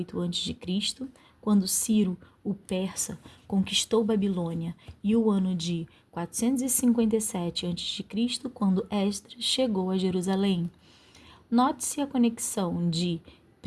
a.C., quando Ciro, o persa, conquistou Babilônia, e o ano de 457 a.C., quando Esdras chegou a Jerusalém. Note-se a conexão de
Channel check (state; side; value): identical; both; correlation 1.00